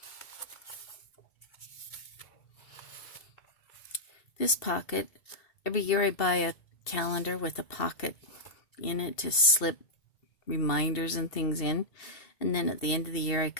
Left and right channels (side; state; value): right; late; 2.7 ms